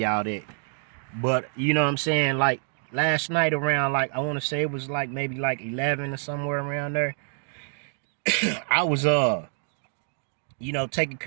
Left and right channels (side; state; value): left; silent; 59 dB below the other